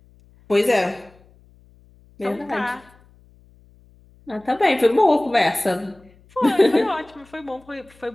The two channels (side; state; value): left; noise; hum, 29 dB below the sound